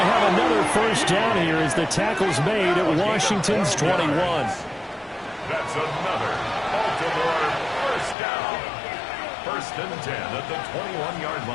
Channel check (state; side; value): drops out; right; at 8.2 s